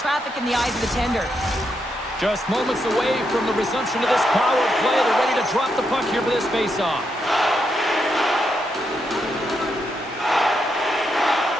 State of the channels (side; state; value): both; normal; correlation 0.81